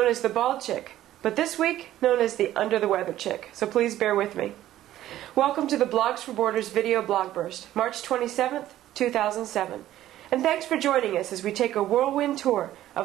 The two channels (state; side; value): quieter; left; 13.4 dB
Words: as the Bald Chick, but this week known as the Under the Weather Chick, so please bear with me. Welcome to the Blogs for Borders video Blogburst, March 27th, 2007. And thanks for joining us as we take a whirlwind tour